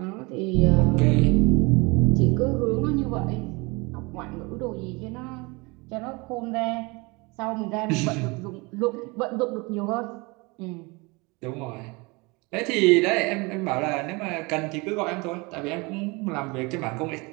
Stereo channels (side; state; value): left; quieter; 26.4 dB